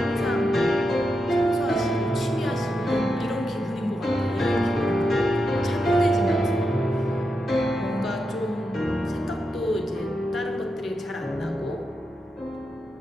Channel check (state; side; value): normal; both; correlation 0.86